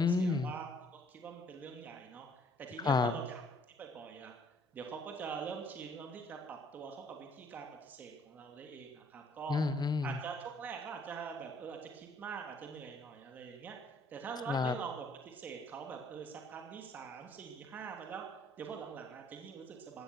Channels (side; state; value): both; normal; correlation 0.62